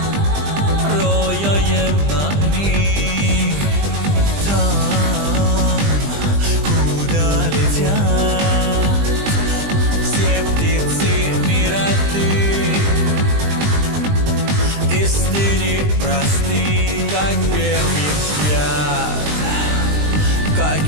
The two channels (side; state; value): left; late; 20 ms